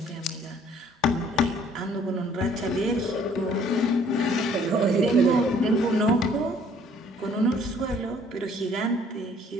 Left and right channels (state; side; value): normal; both; correlation 0.59